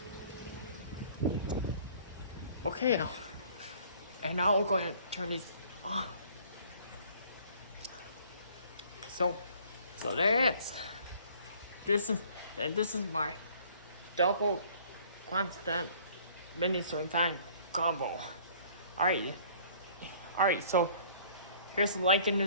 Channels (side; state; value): both; inverted; correlation -0.55